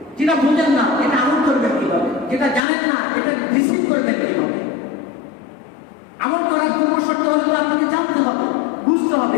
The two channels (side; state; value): right; drops out; at 2.6 s